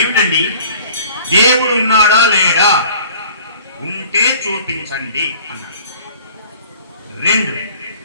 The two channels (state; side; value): inverted; both; correlation -0.49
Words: దేవుడు ఉన్నాడా లేడా? ఉంటే చూపించండి అన్నాడు. 2